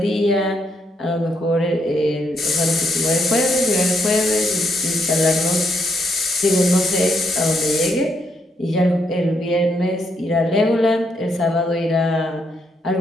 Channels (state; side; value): normal; both; correlation 0.77